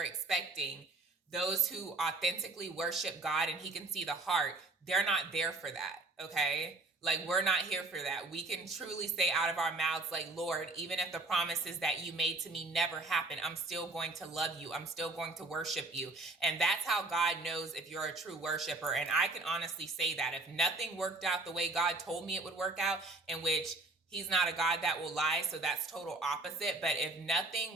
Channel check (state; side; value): quieter; left; 3.2 dB